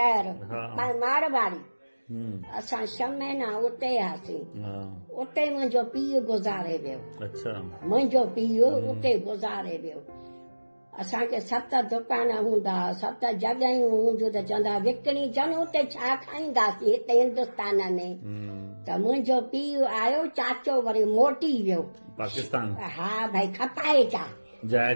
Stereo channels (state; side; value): inverted; both; correlation -1.00